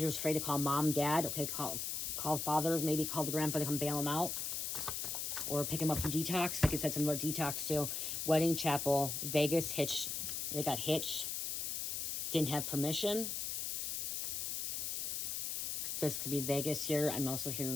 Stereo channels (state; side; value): noise; left; hiss, 2 dB below the sound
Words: was afraid to call mom, dad. Okay, call father, maybe call the grandpa to come bail him out. Or pick him up from Detox. Like it said something about Detox too. Wedding chapel, Vegas, hitched. They got hitched. Didn't have permission. This could be Vegas here. I'm also here